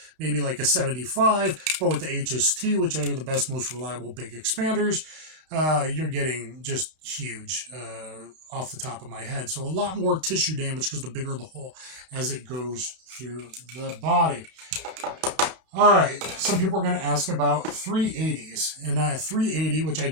maybe like a 75, but with the HST, which are the best, most reliable big expanders, you're getting just huge off the top of my head. So a lot more tissue damage because the bigger the hole as it goes through the body. All right, some people are going to ask about 380s, and a 380, which I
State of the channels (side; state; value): left; late; 32 ms